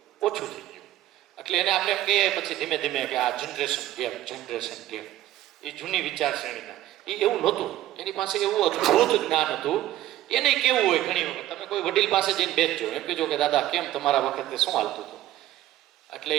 ઓછું થઈ ગયું. એટલે એને આપણે એમ કહીએ પછી ધીમે ધીમે કે આ જનરેશન ગેપ એ જૂની વિચારશ્રેણીના એ એવું નહોતું. એની પાસે એવું અદ્ભુત જ્ઞાન હતું. એને કેવું હોય ઘણી વખત તમે કોઈ વડીલ પાસે જઈને બેસજો, એમ કહેજો કે દાદા કેમ તમારા વખતે શું હાલતું હતું? એટલે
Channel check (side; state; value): left; quieter; 14.0 dB